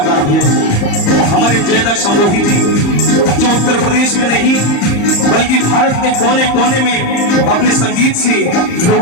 दिए, हमारे जयदत्त समरोही जी, जो उत्तर प्रदेश में नहीं बल्कि भारत के कोने कोने में अपने संगीत से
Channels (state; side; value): late; right; 35 ms